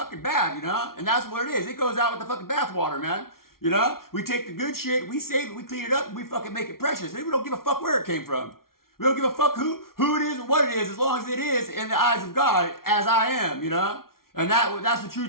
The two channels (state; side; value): late; right; 0.93 ms